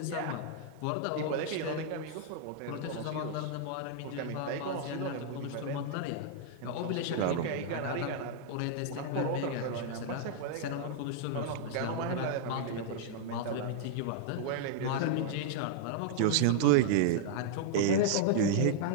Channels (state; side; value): different; both; correlation -0.01